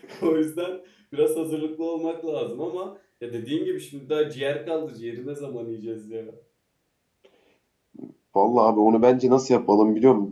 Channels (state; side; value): identical; both; correlation 1.00